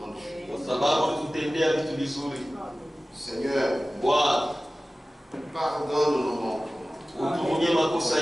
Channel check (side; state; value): both; normal; correlation 0.97